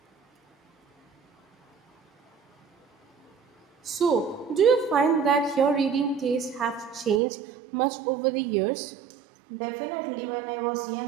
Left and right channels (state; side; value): drops out; left; at 7.2 s